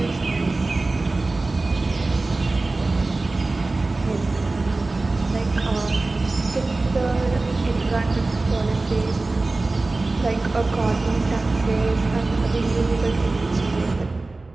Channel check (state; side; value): quieter; left; 3.3 dB